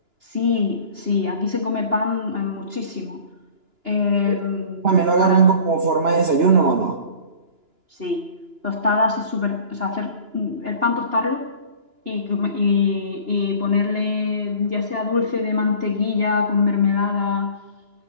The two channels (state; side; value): late; left; 2.9 ms